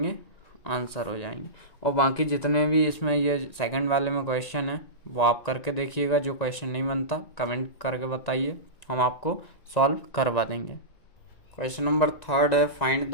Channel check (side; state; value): right; late; 1.9 ms